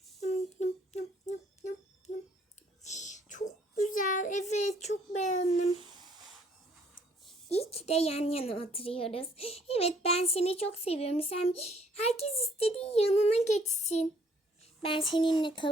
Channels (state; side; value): normal; both; correlation 0.63